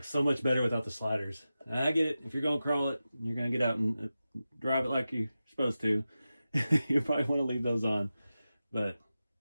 so much better without the sliders. I get it. If you're going to crawl it, you're going to get out and drive it like you're supposed to. You probably want to leave those on. But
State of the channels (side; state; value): both; inverted; correlation -0.93